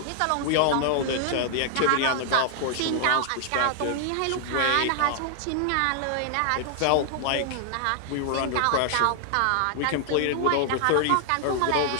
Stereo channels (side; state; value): both; different; correlation 0.00